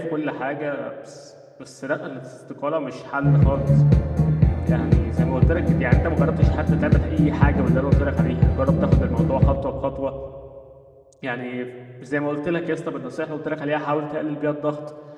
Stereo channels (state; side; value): identical; both; correlation 1.00